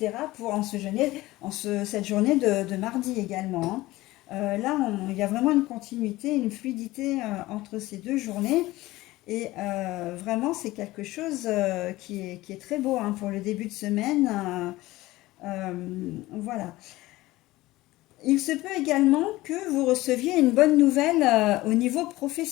pour cette journée de mardi également. Hein. Là, il y a vraiment une continuité, une fluidité entre ces deux journées. Et vraiment, c'est quelque chose qui est très beau hein, pour le début de semaine. Voilà. Il se peut également que vous receviez une bonne nouvelle au niveau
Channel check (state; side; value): quieter; right; 18.3 dB